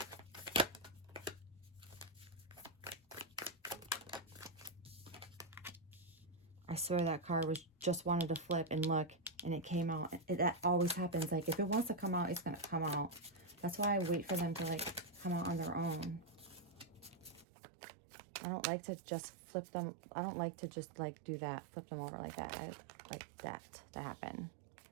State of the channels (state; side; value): drops out; left; at 17.4 s